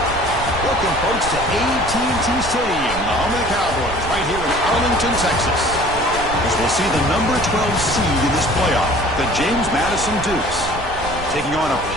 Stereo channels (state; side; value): noise; right; rumble, 11 dB below the sound